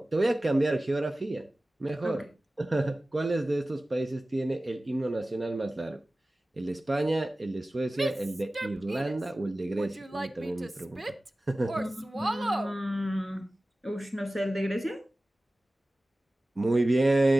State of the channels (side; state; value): both; normal; correlation 0.97